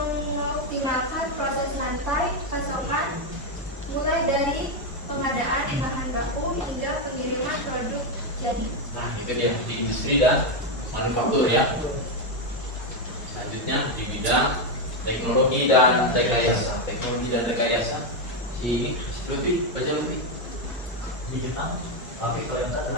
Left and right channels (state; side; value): normal; both; correlation 0.06